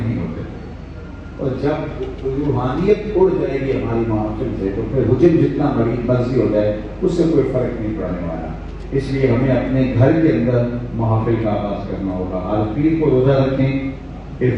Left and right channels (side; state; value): both; identical; correlation 1.00